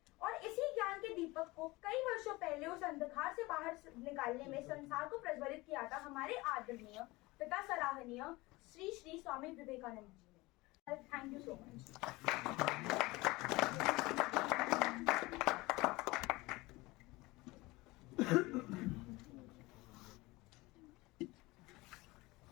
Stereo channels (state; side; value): quieter; right; 21.7 dB